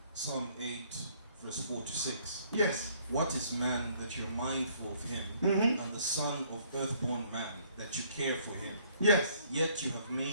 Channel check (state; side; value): inverted; both; correlation -0.63